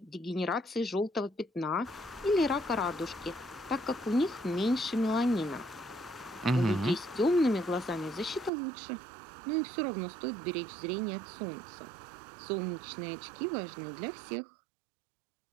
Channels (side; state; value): left; drops out; at 8.5 s